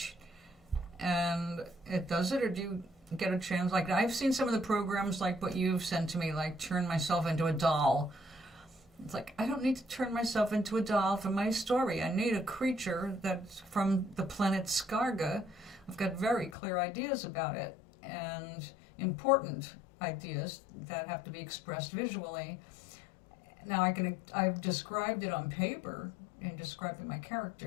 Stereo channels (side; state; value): right; drops out; at 16.6 s